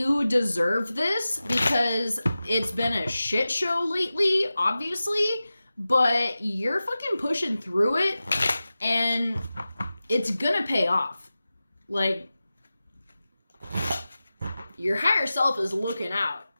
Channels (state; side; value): inverted; both; correlation -0.95